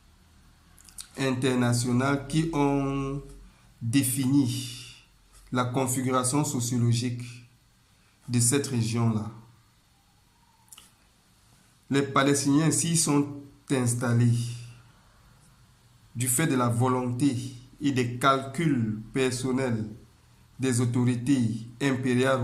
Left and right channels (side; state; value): both; identical; correlation 1.00